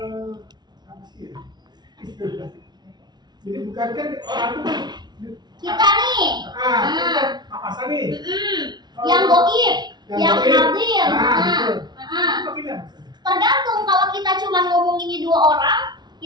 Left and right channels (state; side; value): late; left; 0.20 ms